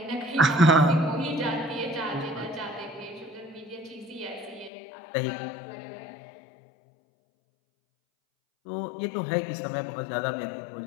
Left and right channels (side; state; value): right; drops out; at 4.7 s